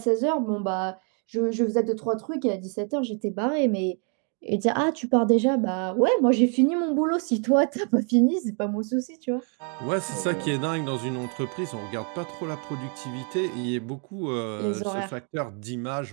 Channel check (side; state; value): left; quieter; 40.0 dB